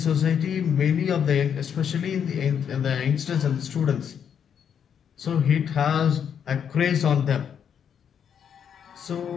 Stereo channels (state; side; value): quieter; right; 8.0 dB